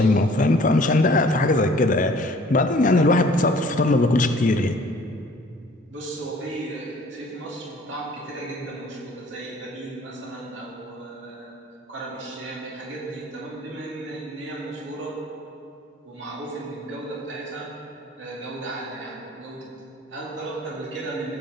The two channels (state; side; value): normal; both; correlation 0.52